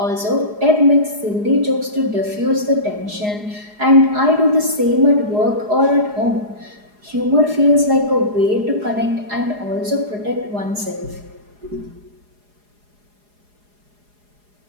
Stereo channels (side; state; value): left; late; 4.8 ms